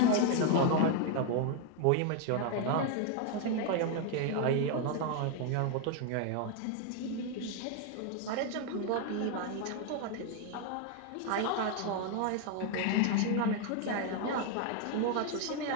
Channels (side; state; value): both; different; correlation 0.01